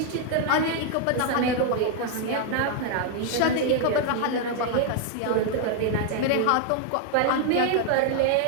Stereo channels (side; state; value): both; different; correlation 0.00